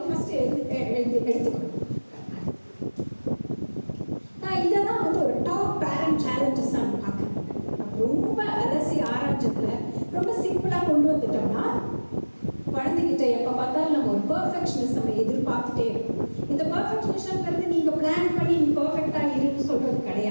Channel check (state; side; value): inverted; both; correlation -1.00